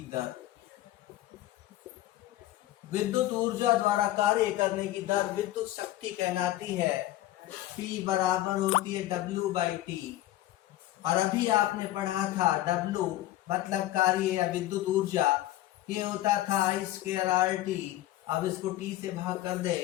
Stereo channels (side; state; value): right; quieter; 14.9 dB